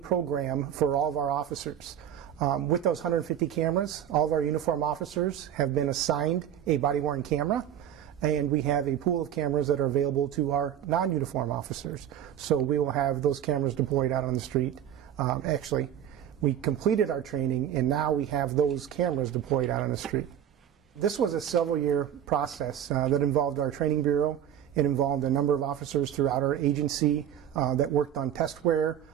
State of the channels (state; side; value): quieter; left; 10.1 dB